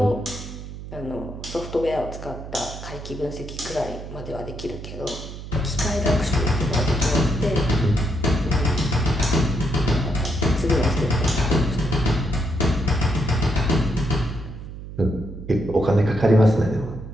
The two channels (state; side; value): noise; right; hum, 11 dB below the sound